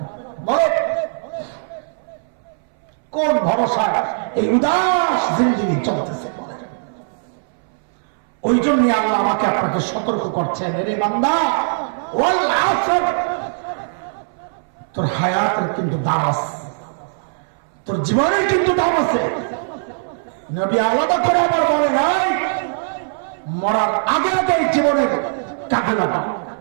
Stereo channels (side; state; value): left; silent; 62 dB below the other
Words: বলেন, কোন ভরসায় এই উদাস জিন্দেগি চলতেছে? বলেন। ওই জন্য আল্লাহ আমাকে আপনাকে সতর্ক করছেন, রে বান্দা, ওয়াল আসর, তোর হায়াতের কিন্তু দাম আছে, তোর জীবনের কিন্তু দাম আছে। নবী আলাদা করে আবার বলে নাই, মরার আগে আগে জীবনের কাজে লাগাও,